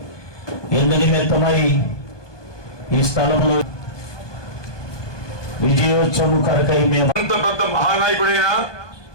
ఎందు నిమిత్తమై ఈ స్థలంలో విజయోత్సవం కొరకై మేము అంత పెద్ద మహానాయకుడైనా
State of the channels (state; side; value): late; right; 1.2 ms